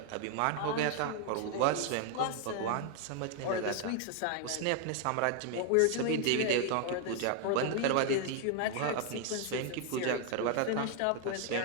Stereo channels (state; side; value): different; both; correlation 0.00